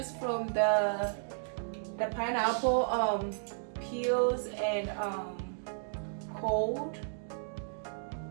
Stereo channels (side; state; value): left; silent; digital silence